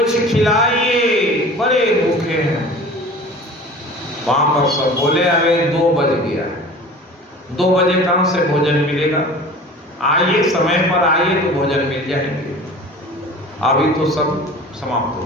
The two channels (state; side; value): normal; both; correlation 0.41